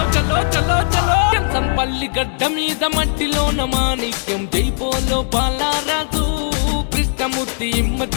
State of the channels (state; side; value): silent; right; digital silence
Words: చలో చలో చలో ఎంసన్పల్లి గడ్డ మీద మట్టిలోన మాణిక్యం జైపోలో బాలరాజు కృష్ణమూర్తి